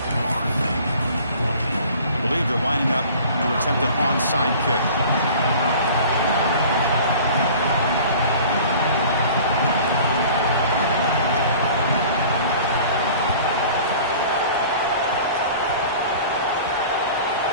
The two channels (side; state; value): both; inverted; correlation -0.45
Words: I believe they're lining up to attempt an onside kick.